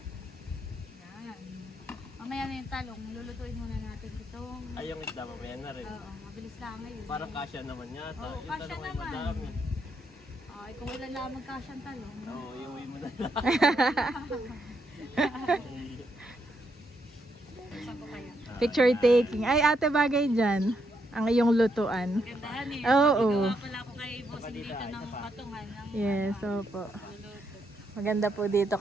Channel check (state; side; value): normal; both; correlation 0.78